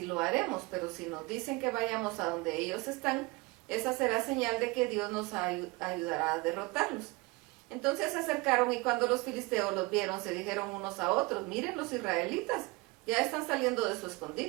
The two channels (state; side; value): quieter; left; 24.4 dB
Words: lo haremos. Pero si nos dicen que vayamos a donde ellos están, esa será señal de que Dios nos ayudará a derrotarlos. Entonces se acercaron, y cuando los filisteos los vieron, se dijeron unos a otros: miren, los israelitas ya están saliendo de su